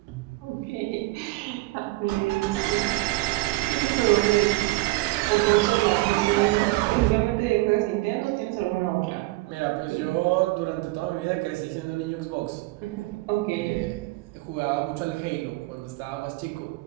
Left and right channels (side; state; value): left; quieter; 20.7 dB